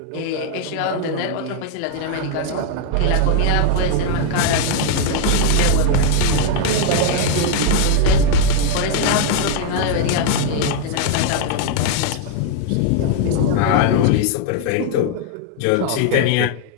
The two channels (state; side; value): different; both; correlation 0.00